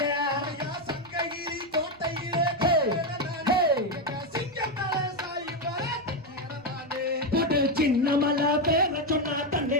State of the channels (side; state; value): right; noise; rumble, 30 dB below the sound